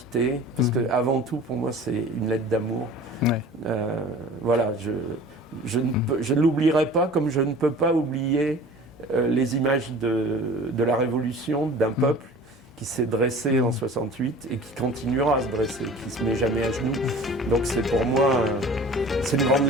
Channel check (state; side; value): normal; both; correlation 0.43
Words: parce que avant tout, pour moi, c'est une lettre d'amour. Ouais. Voilà, je ne l'oublierai pas, comme je ne peux pas oublier les images de la Révolution, d'un peuple qui s'est dressé en 68 et qui continuera à se dresser, qui ne se met jamais à genoux. Donc c'est pour moi, c'est une grande